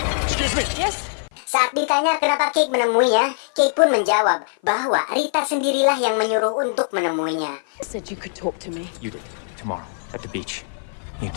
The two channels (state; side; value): silent; right; 56 dB below the other